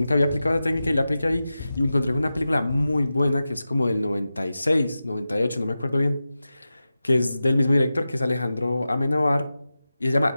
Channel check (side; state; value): both; inverted; correlation -0.93